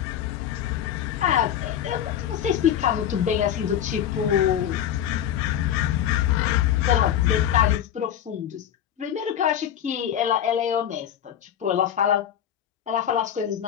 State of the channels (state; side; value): quieter; right; 10.1 dB